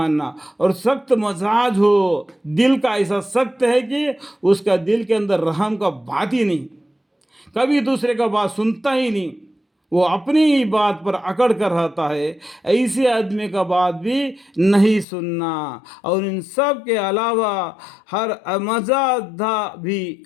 اور سخت مزاج ہو، دل کا ایسا سخت ہے کہ اس کا دل کے اندر رحم کا بات ہی نہیں، کبھی دوسرے کا بات سنتا ہی نہیں، وہ اپنی ہی بات پر اکڑ کر رہتا ہے. ایسے آدمی کا بات بھی نہیں سننا. اور ان سب کے علاوہ ہر مزادہ بھی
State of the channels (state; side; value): drops out; right; at 15.1 s